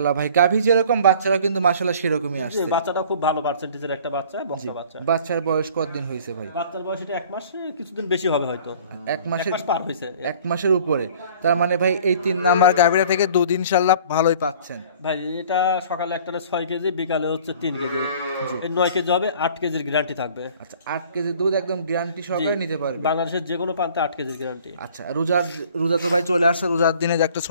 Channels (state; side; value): inverted; both; correlation -0.50